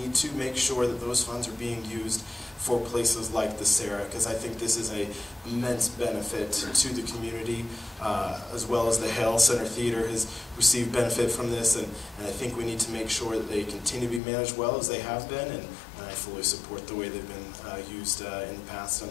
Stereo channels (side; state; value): right; drops out; at 14.2 s